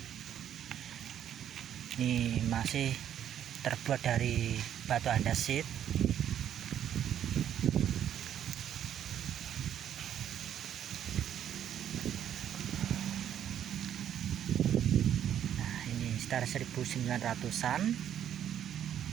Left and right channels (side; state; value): left; quieter; 10.1 dB